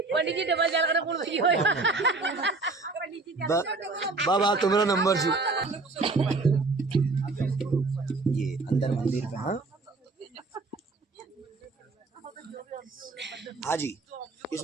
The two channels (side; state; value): left; quieter; 3.7 dB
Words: पंडित जी डबल जाल करना कौन भई होया बाबा तुम्हारा नंबर जी ये अंदर मंदिर पे। हाँ हाँ जी,